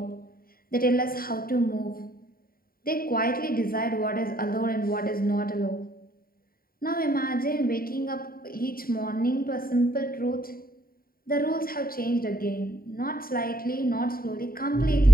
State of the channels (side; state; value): right; late; 0.43 ms